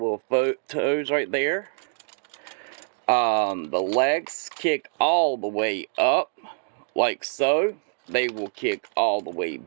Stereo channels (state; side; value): silent; left; digital silence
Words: toes right there. The legs kick all the way up, like so. They will kick all the way